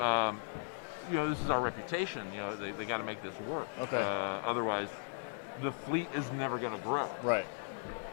This is our reputation. They got to make this work. Okay. Otherwise, the fleet is never going to grow. Right.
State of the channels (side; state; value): right; silent; digital silence